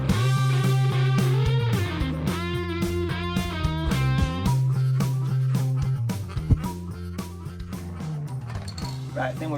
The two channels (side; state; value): both; identical; correlation 1.00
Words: Right, I think we're